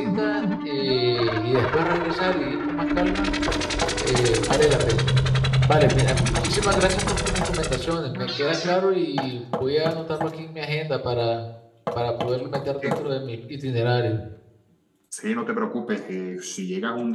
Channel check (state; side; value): identical; both; correlation 1.00